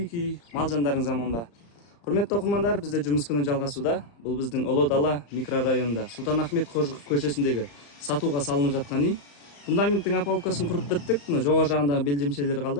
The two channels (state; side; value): late; right; 35 ms